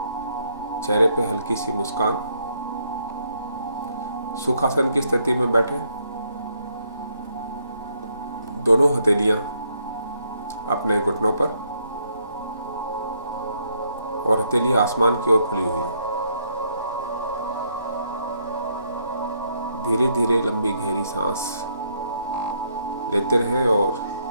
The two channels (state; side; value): inverted; both; correlation -0.72